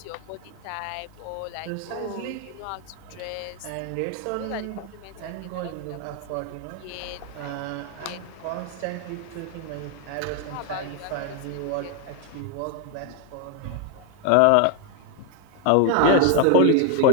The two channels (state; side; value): different; both; correlation 0.00